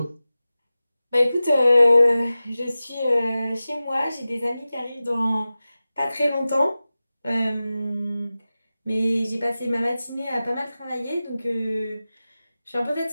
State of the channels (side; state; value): both; inverted; correlation -0.95